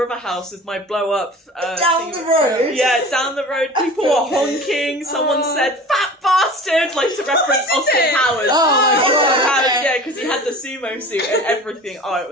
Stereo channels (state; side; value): normal; both; correlation 0.39